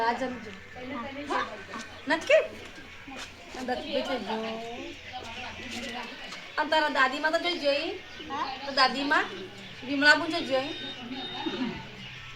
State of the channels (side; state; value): both; identical; correlation 1.00